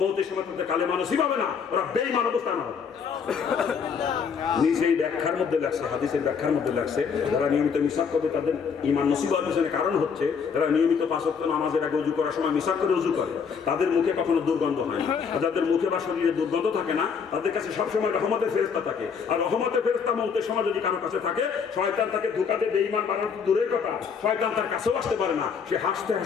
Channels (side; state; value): right; quieter; 6.3 dB